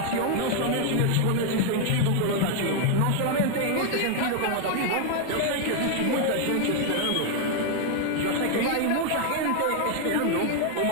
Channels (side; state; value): both; different; correlation 0.00